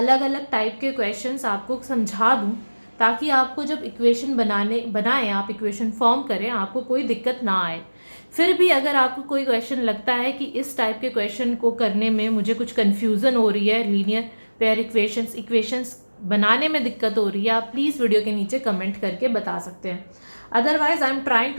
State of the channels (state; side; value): inverted; both; correlation -1.00